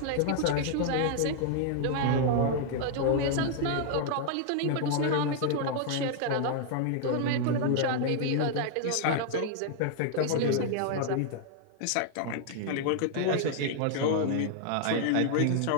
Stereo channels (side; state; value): both; different; correlation -0.01